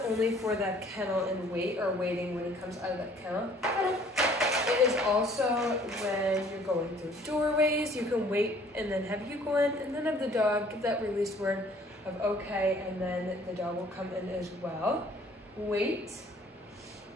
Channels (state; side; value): normal; both; correlation 0.56